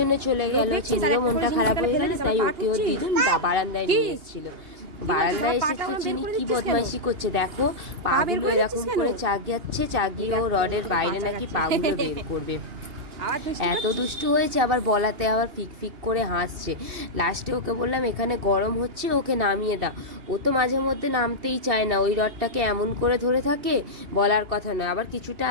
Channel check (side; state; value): left; late; 2.8 ms